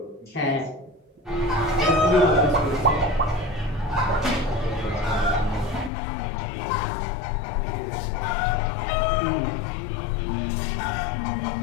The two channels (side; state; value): right; drops out; at 5.9 s